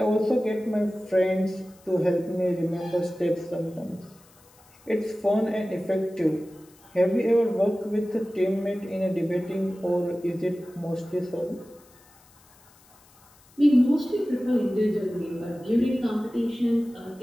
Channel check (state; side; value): noise; left; hiss, 29 dB below the sound